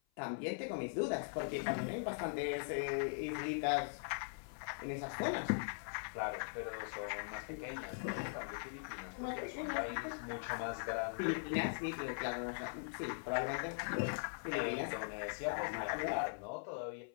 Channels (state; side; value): silent; right; 50 dB below the other